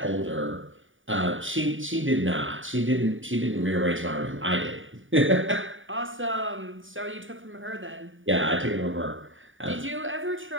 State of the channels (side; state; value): left; late; 0.57 ms